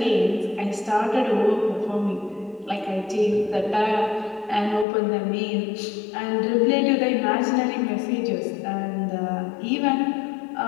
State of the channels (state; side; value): drops out; right; at 4.9 s